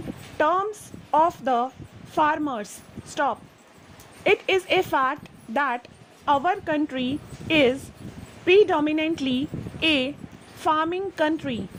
terms of the farmers. Stop. It is a fact that our country is predominantly a farming country.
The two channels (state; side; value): identical; both; correlation 1.00